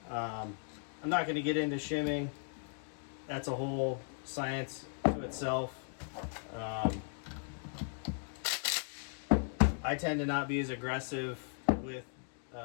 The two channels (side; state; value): right; silent; 53 dB below the other